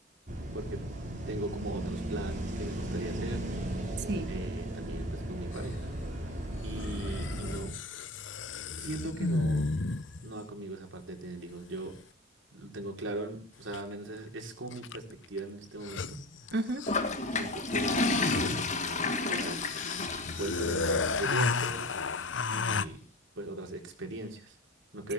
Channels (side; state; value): both; normal; correlation 0.33